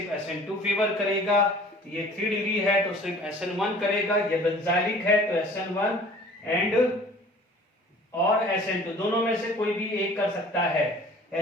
SN2 फेवर करेगा, ये 3 डिग्री है तो सिर्फ SN1 करेगा, ये बेंजाइलिक है तो SN1 एंड और SN2 दोनों में से कोई भी एक कर सकता है,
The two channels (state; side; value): normal; both; correlation 0.48